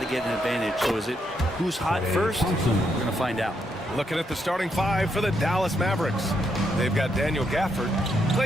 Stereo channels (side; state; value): both; normal; correlation 0.78